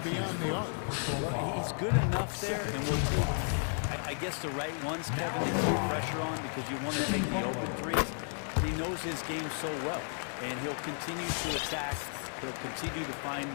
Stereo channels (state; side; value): silent; right; 56 dB below the other